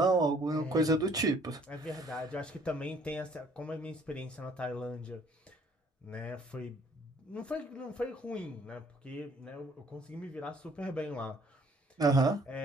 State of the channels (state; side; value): normal; both; correlation 0.60